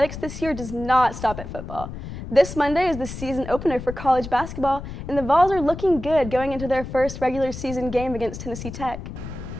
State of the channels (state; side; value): noise; left; rumble, 10 dB below the sound